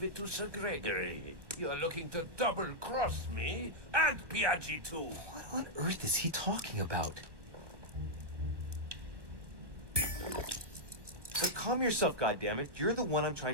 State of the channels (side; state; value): left; late; 1.1 ms